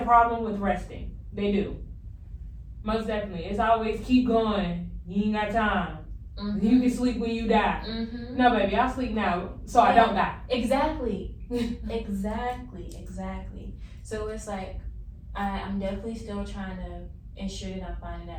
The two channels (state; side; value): identical; both; correlation 1.00